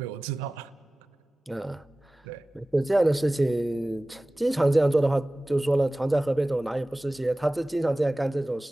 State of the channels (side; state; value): both; normal; correlation 0.97